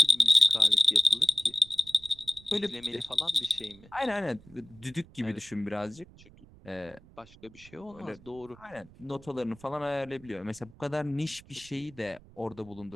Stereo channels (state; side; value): noise; right; rumble, 23 dB below the sound